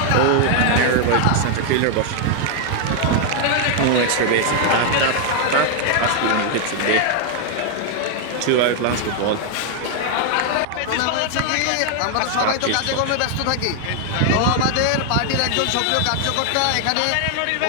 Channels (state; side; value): different; both; correlation 0.00